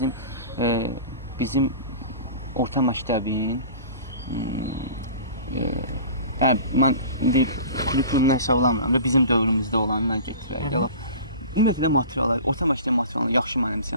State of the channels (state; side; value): inverted; both; correlation -0.39